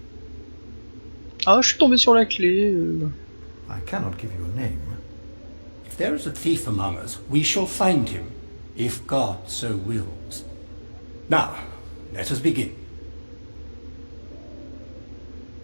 Ah, je suis tombé sur la clé. I cannot give you a name. If there is a thief among us, we shall find him, if God so wills. Now, let us begin.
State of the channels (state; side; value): inverted; both; correlation -1.00